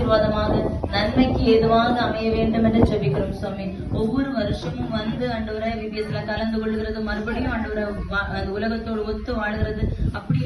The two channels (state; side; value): identical; both; correlation 1.00